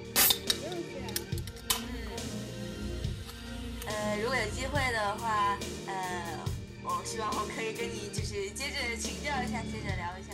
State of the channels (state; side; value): identical; both; correlation 1.00